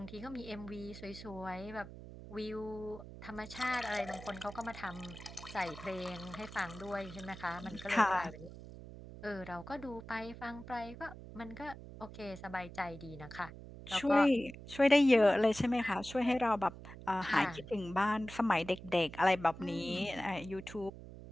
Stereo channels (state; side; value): noise; right; hum, 14 dB below the sound